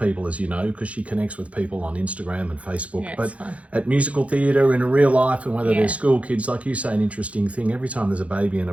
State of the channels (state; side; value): late; left; 0.065 ms